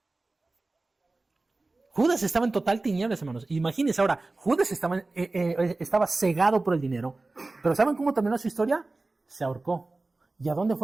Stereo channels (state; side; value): quieter; left; 3.2 dB